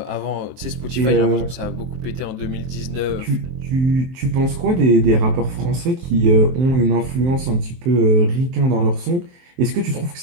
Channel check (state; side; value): late; left; 23 ms